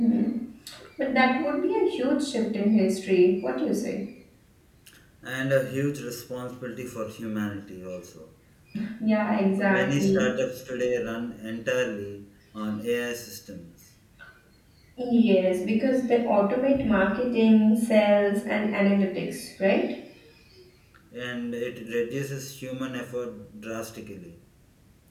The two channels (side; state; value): both; identical; correlation 1.00